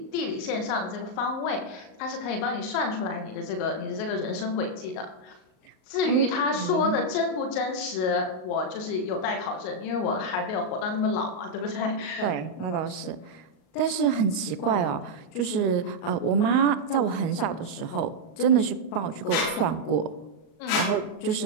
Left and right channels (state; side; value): late; right; 38 ms